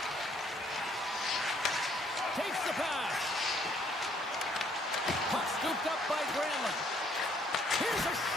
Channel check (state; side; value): normal; both; correlation 0.65